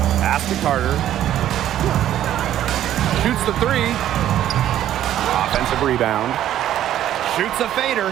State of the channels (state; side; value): quieter; left; 11.9 dB